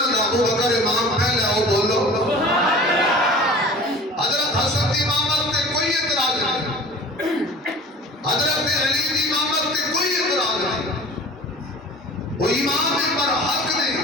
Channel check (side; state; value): both; normal; correlation 0.42